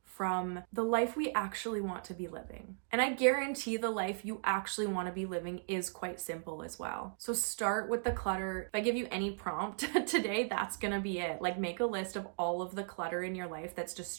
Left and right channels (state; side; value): silent; left; digital silence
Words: from the life we actually want to be living. And I guarantee the life you actually want to be living is quite simple as well. So start with the clutter. If I give you any prompt today, that's gonna be it. Like, make a list of all of the clutter in your life that's